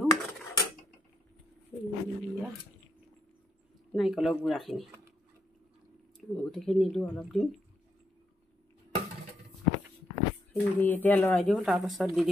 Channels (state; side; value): normal; both; correlation 0.77